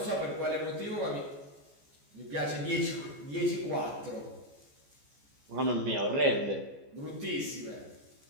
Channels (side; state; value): left; late; 14 ms